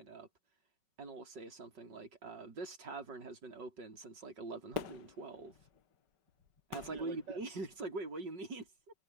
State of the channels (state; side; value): late; left; 5.3 ms